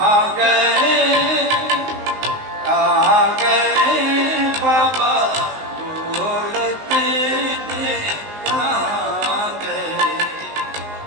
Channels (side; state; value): left; late; 19 ms